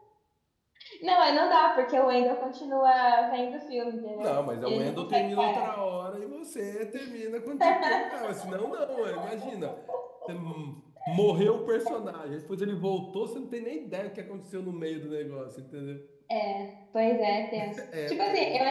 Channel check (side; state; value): both; identical; correlation 1.00